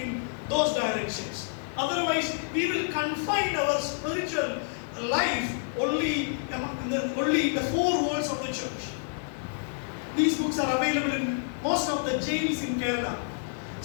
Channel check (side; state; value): right; silent; 59 dB below the other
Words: in those directions. Otherwise, we will confine our spiritual life only in the 4 walls of the church. These books are available in most of the jails in Kerala.